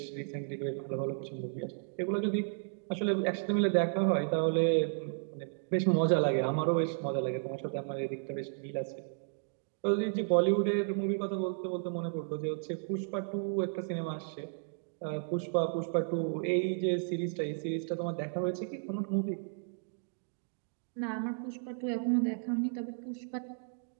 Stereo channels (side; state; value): left; silent; digital silence